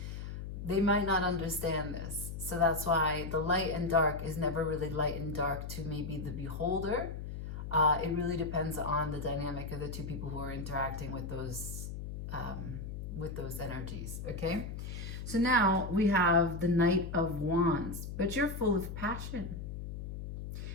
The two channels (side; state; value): left; noise; hum, 7 dB below the sound